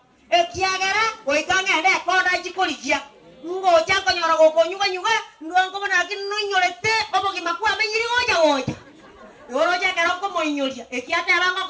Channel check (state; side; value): identical; both; correlation 1.00